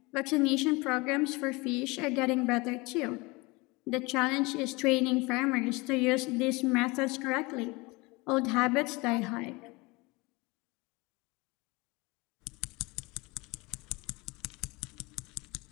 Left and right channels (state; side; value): quieter; right; 24.8 dB